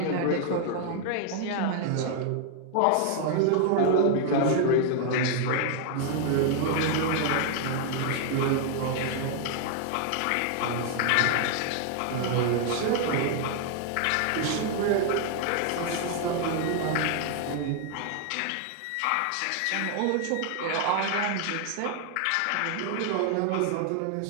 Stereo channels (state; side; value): different; both; correlation 0.00